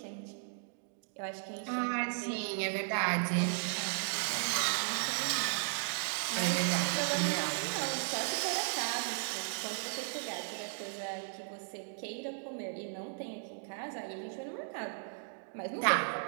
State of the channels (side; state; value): left; silent; digital silence